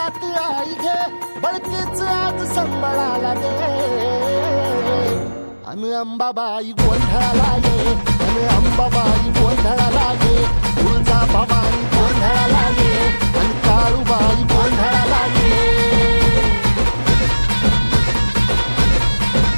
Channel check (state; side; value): inverted; both; correlation -1.00